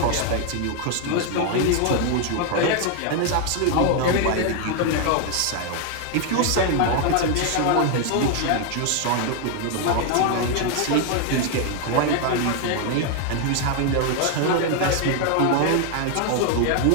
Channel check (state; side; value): different; both; correlation 0.01